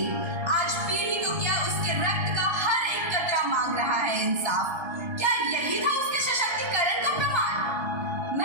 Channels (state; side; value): late; left; 1.3 ms